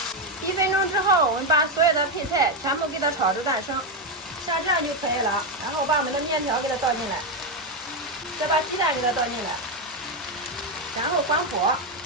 1分钟之后，我们把所有的配菜全部给它炒至断生，像这样就可以了。然后把我们的面条给它倒进来，再把鸡蛋给它倒进来，然后关火。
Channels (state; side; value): normal; both; correlation 0.07